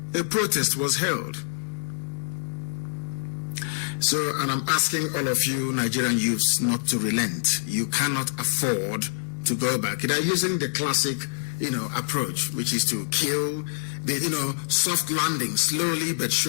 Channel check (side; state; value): right; silent; digital silence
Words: a protest was held. So, and I'm asking all of you Nigerian youths not to relent. You cannot afford to go back. They're using the classic, approach, which is to kill the, soft landing, slowly but